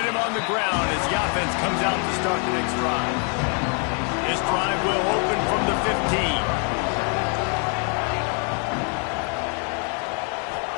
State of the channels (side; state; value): right; quieter; 39.7 dB